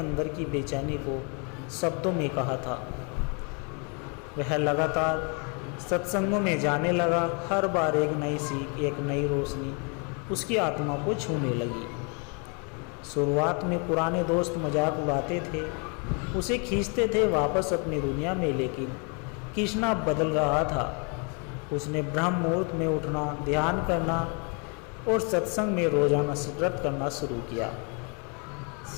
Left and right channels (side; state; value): right; quieter; 35.5 dB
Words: की बेचैनी को शब्दों में कहा था। वह लगातार सत्संगों में जाने लगा। हर बार एक नई सीख, एक नई रोशनी उसकी आत्मा को छूने लगी। शुरुआत में पुराने दोस्त मजाक उड़ाते थे, उसे खींचते थे वापस अपनी दुनिया में, लेकिन कृष्णा बदल रहा था। उसने ब्रह्म मुहूर्त में उठना, ध्यान करना और सत्संग में रोजाना व्रत करना शुरू किया।